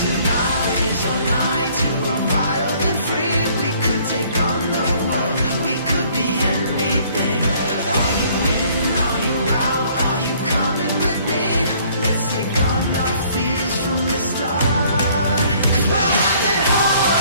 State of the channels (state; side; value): inverted; both; correlation -0.59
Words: tonight is our night to run wild and free. We could take on the world, we could be anything. Are you in, are you out, are you coming with me? Let's take on our fears from the start. 'Cause we're wild at